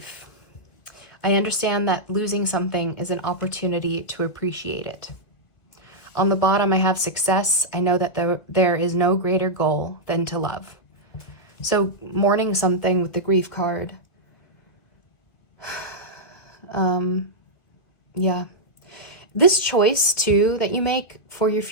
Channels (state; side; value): late; right; 1.9 ms